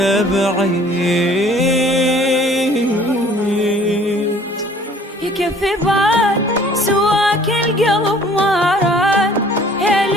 بعيد. يكفي بعد سواك القلب ما راد، يا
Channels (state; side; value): normal; both; correlation 0.54